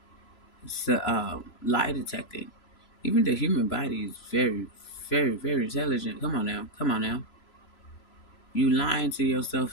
lie detecting. Even the human body is very, very, very intelligent. Come on now. Come on now. You lying to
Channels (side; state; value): right; late; 3.0 ms